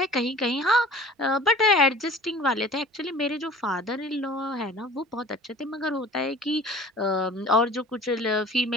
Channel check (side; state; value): both; normal; correlation 0.44